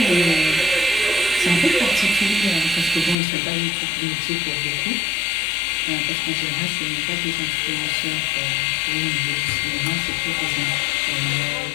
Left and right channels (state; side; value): drops out; right; at 3.2 s